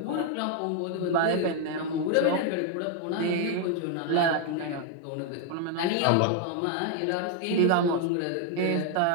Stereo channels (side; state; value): both; different; correlation 0.01